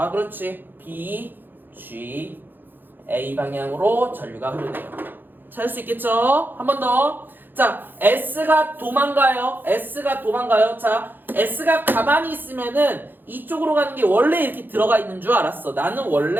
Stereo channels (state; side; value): late; left; 0.092 ms